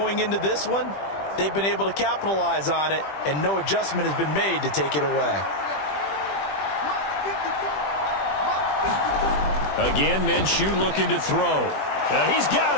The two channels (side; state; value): right; late; 20 ms